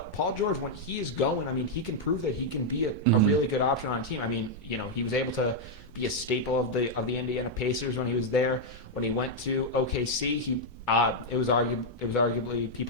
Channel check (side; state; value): both; normal; correlation -0.02